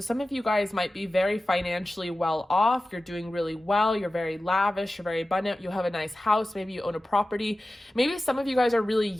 some of you guys might be very financially well off. You're doing really well. You're very lavish. You're very abundant. You have a nice house. Maybe you own a property. Maybe some of you guys are really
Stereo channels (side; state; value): both; normal; correlation 0.95